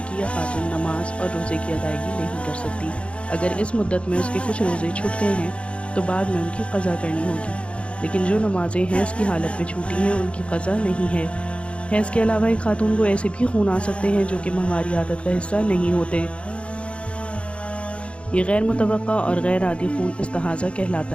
یا خاتون نماز اور روزے کی ادائیگی نہیں کر سکتی۔ اگر اس مدت میں اس کے کچھ روزے چھوٹ گئے ہیں تو بعد میں ان کی قضا کرنی ہوگی، لیکن جو نمازیں حیض کی حالت میں چھوٹی ہیں ان کی قضا نہیں ہے۔ حیض کے علاوہ ایک خاتون کو ایسے بھی خون آ سکتے ہیں جو کہ ماہواری عادت کا حصہ نہیں ہوتے۔ یہ غیر متوقع اور غیر عادی خون استحاضہ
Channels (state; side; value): late; right; 0.059 ms